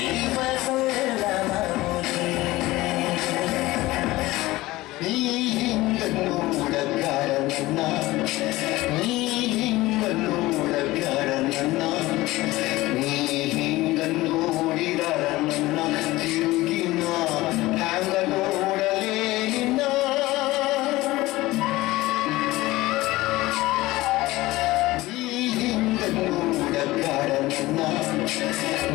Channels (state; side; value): quieter; right; 18.7 dB